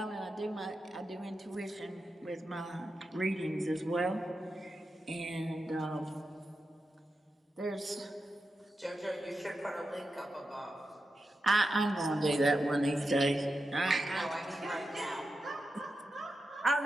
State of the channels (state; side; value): normal; both; correlation 0.89